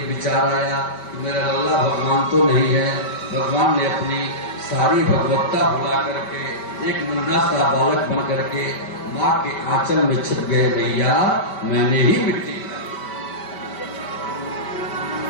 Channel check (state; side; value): late; right; 5.1 ms